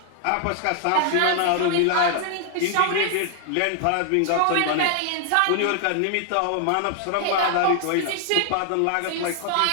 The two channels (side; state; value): both; different; correlation 0.00